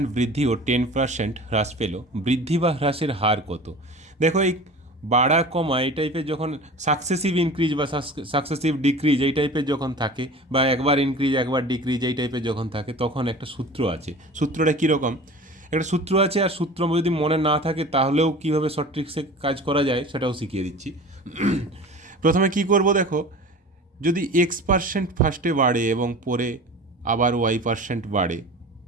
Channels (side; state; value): both; normal; correlation 0.38